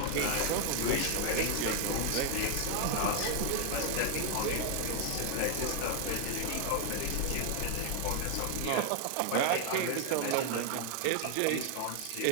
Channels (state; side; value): different; both; correlation 0.00